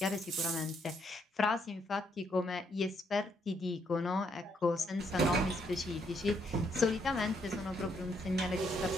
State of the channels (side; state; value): both; normal; correlation 0.73